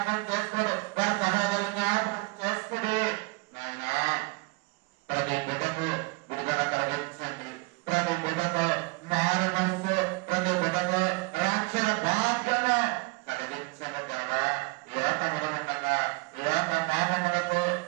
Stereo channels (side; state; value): left; quieter; 27.3 dB